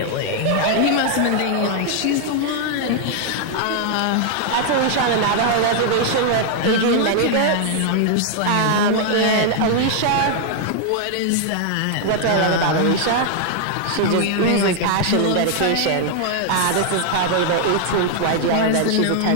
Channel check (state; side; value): different; both; correlation 0.00